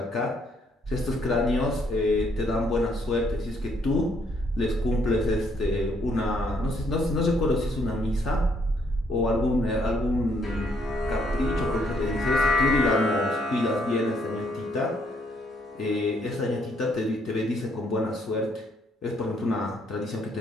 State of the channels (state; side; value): normal; both; correlation 0.70